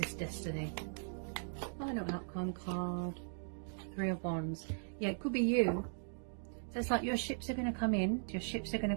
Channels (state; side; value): silent; left; digital silence